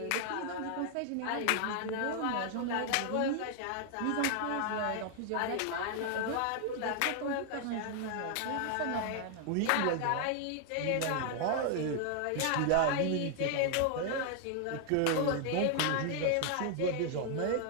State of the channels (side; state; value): both; different; correlation 0.00